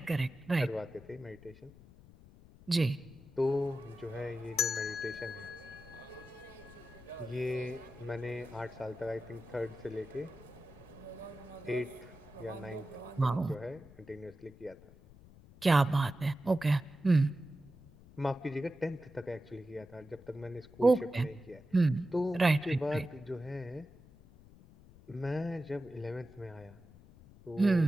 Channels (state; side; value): noise; left; rumble, 22 dB below the sound